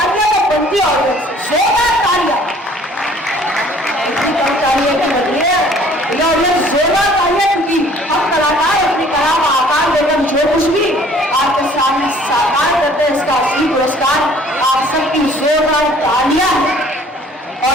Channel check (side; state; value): both; normal; correlation 0.55